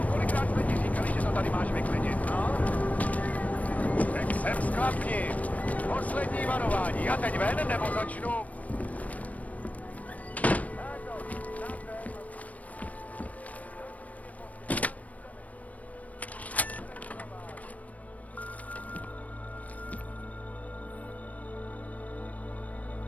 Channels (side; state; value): right; late; 0.070 ms